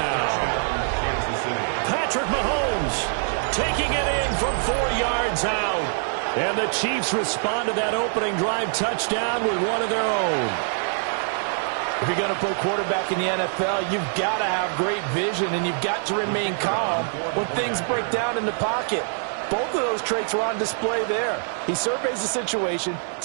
Patrick Mahomes taking it in from 4 yards out. And the Chiefs respond to that opening drive touchdown with one of their own. If you're going to play quarterback in the NFL, you've got to have great vision, and you've got to remain calm when things break down in the pocket. Both of those traits were on display there. He surveys the situation,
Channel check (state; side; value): silent; left; 62 dB below the other